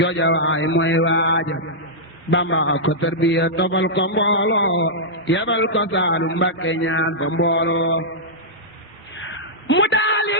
waay mooy waaja Bamba ko tarbiya tofal ko mbooloo yebal ko Saalum Mbàkke ñaan fa mbooloo mu daali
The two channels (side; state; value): both; normal; correlation -0.10